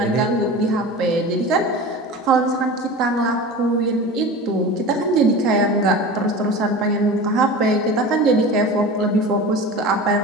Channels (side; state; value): both; normal; correlation 0.33